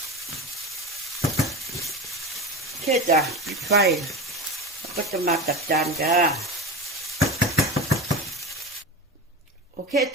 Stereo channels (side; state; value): both; normal; correlation 0.26